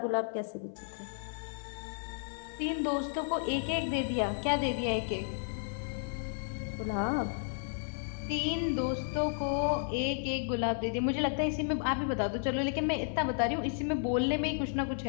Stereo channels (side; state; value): right; silent; 56 dB below the other